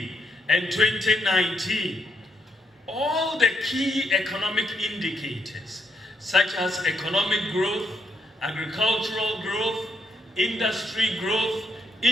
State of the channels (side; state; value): both; normal; correlation 0.76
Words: and 2019, all the key economic indicators, such as economic growth, agricultural growth, industry growth,